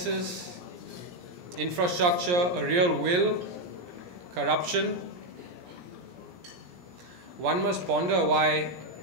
infrastructure, a real will, corruption. One must ponder why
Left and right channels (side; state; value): left; late; 17 ms